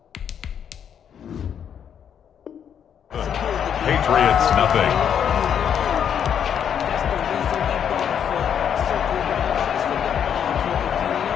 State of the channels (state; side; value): quieter; right; 8.4 dB